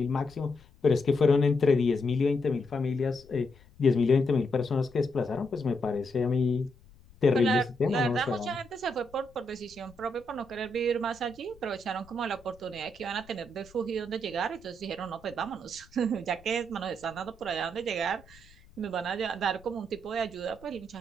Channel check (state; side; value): noise; left; rumble, 25 dB below the sound